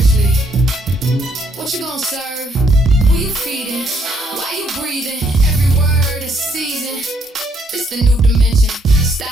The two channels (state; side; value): normal; both; correlation 0.70